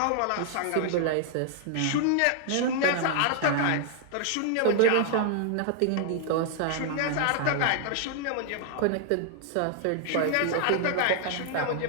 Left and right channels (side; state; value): both; different; correlation -0.01